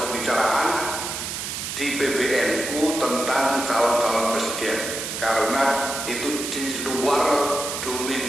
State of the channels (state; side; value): noise; right; hiss, 5 dB below the sound